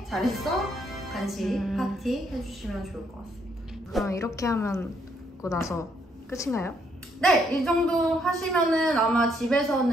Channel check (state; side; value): normal; both; correlation 0.72